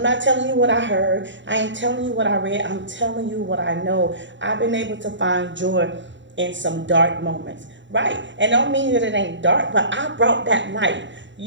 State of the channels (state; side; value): late; left; 0.54 ms